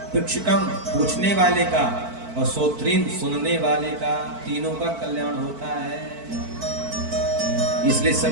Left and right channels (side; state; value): left; late; 4.5 ms